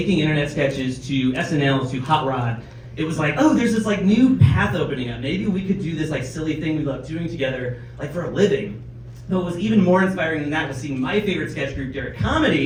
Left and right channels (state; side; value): identical; both; correlation 1.00